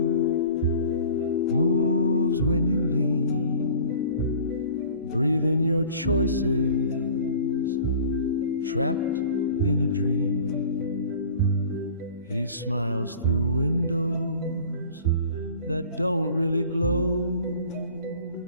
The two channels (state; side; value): inverted; both; correlation -0.45